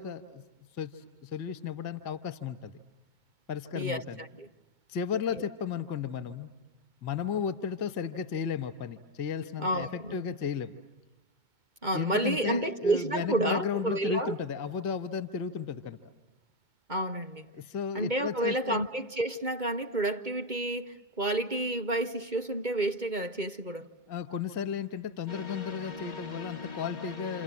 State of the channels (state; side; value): late; left; 2.2 ms